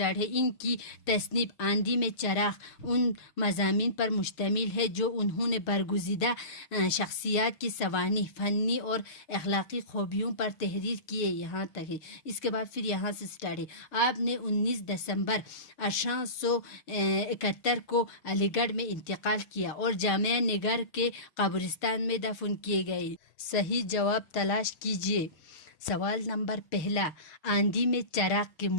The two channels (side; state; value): right; late; 6.2 ms